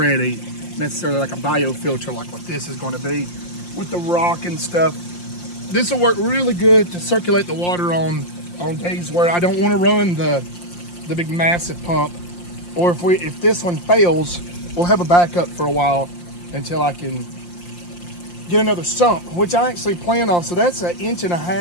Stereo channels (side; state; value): right; late; 5.7 ms